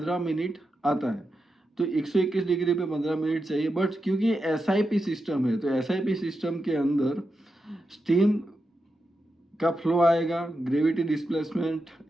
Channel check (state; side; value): normal; both; correlation 0.88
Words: मिनट आता है। तो 121 डिग्री पे 15 मिनट चाहिए। बट क्योंकि SIP सिस्टम है तो SIP सिस्टम के अंदर स्टीम का फ्लो आएगा, ग्रेविटी डिस्प्लेसमेंट।